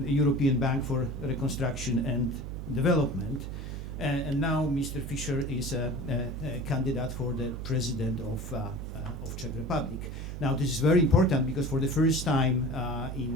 European Bank for Reconstruction and Development. And now Mr. Fischer is a candidate for the president of Czech Republic. Now this is very important because for the first time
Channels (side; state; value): right; noise; hum, 7 dB below the sound